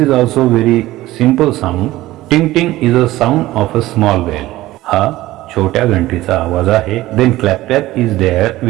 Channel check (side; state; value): left; quieter; 16.8 dB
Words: also very simple sound. Ting ting is a sound of a small bell. हा छोट्या घंटीचा आवाज आहे. Then clap clap is there,